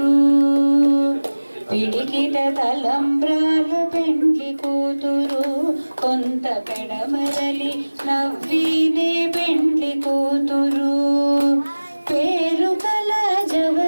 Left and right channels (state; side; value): inverted; both; correlation -1.00